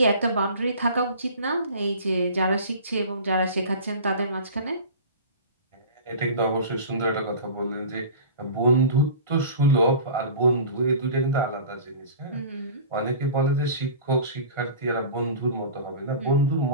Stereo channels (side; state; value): both; inverted; correlation -0.38